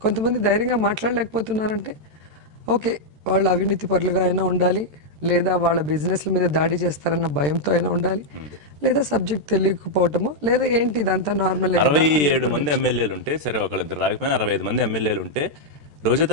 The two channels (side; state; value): left; late; 13 ms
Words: కొంతమంది ధైర్యంగా మాట్లాడలేకపోతున్నారంటే ఓకే, వాళ్ళు అవినీతి పరులుగా అయినా ఉండాలి, లేదా వాళ్ళ బిజినెస్ల మీద దాడి చేస్తారన్న భయంతో అయినా ఉండాలి, లేదా సబ్జెక్ట్ తెలియకపోవటమో, లేదా ఏంటి ఇదంతా నార్మల్. 67 మంది ఎమ్మెల్యేలు ఉంటే సరే, ఒకళ్ళిద్దరు రాకపోయినా 65 మంది ఎమ్మెల్యేలు ఉంటే రోజా